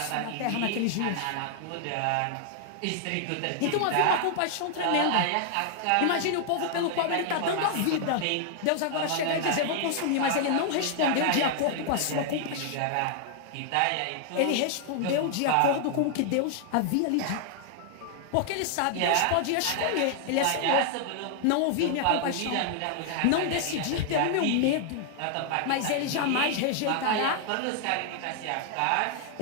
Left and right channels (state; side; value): different; both; correlation 0.00